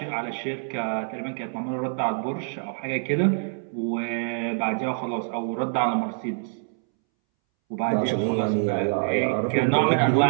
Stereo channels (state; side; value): silent; left; 61 dB below the other